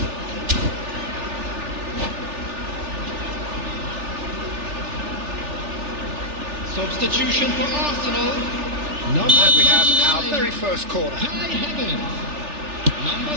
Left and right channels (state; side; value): late; left; 3.4 ms